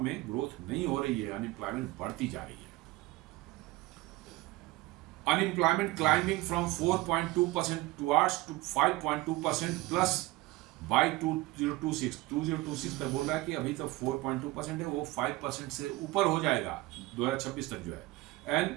में ग्रोथ नहीं हो रही है, अनएम्प्लॉयमेंट बढ़ती जा रही है। Unemployment climbing from 4.2% towards to 5.2% plus by 2026 तक बोल रहा है कि अभी तो 4.2% है, वो 5% से ऊपर हो जाएगा 2026 तक जो है।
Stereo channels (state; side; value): quieter; left; 19.6 dB